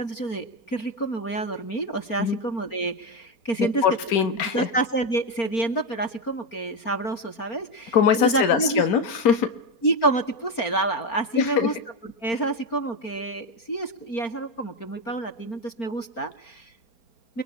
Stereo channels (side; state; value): right; late; 4.3 ms